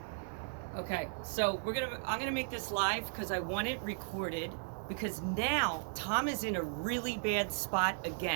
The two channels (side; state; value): left; silent; digital silence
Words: Okay, so I'm gonna make this live because I want it recorded, because now Tom is in a really bad spot